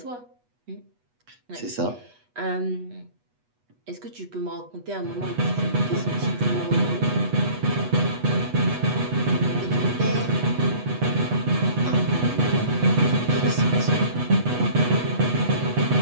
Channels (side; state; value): left; late; 8.2 ms